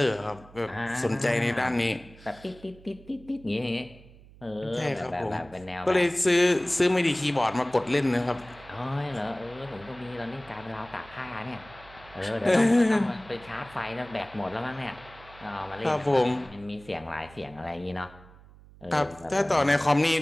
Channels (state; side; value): noise; right; hum, 22 dB below the sound